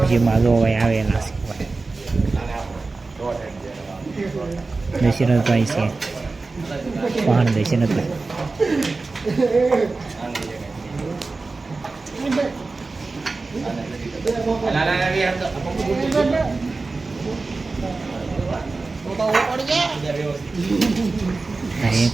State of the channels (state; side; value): quieter; left; 3.7 dB